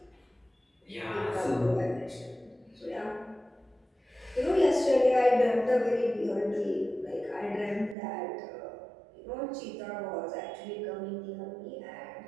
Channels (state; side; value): drops out; left; at 8.0 s